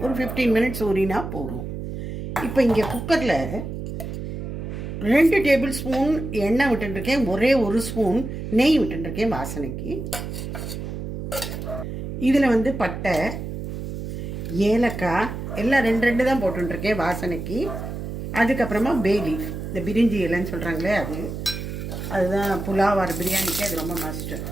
ஒரு 15 மினிட்ஸ் ஊறினா போதும். இப்போ இங்கே குக்கரில் 2 டேபிள் ஸ்பூன் எண்ணெய் விட்டுருக்கேன். ஒரே 1 ஸ்பூன் நெய் விட்டுருக்கேன் வாசனைக்கு. இதில் பட்டை, ஏலக்காய் எல்லாம் 2 தான் போட்டுருக்கேன் வாசனைக்கு. அதுக்கப்புறமா பே லீஃப், இந்த பிரிஞ்சி இலைன்னு சொல்கிறாங்களே அதுதான் புலாவார் பிரியாணிக்கு அது ரொம்ப மஸ்ட்டு.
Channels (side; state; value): right; noise; hum, 6 dB below the sound